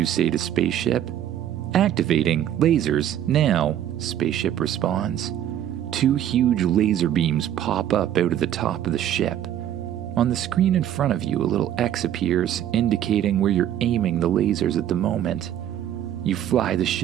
say to spaceship. Activating lasers now, spaceship responds. 2 huge laser beams pop up out of the top of the ship. On the screen in front of you, a little X appears, indicating where you're aiming the lasers at the moment. You fly the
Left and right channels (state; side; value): quieter; left; 11.0 dB